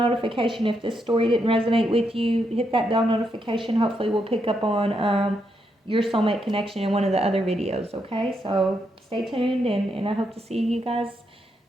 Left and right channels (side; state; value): both; normal; correlation 0.80